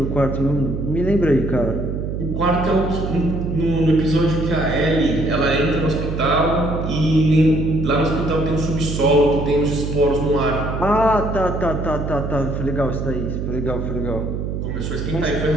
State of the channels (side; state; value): right; noise; hum, 4 dB below the sound